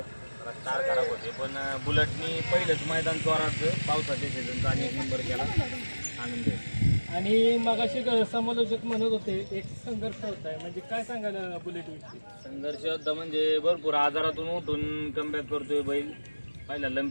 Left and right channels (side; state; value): both; inverted; correlation -1.00